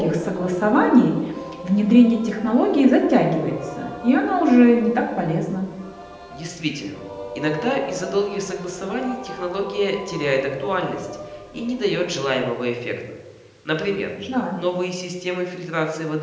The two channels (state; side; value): identical; both; correlation 1.00